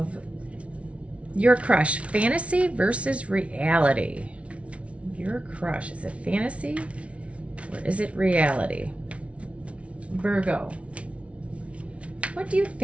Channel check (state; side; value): late; left; 0.062 ms